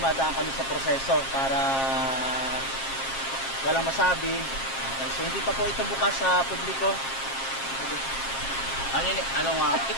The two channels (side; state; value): right; late; 7.5 ms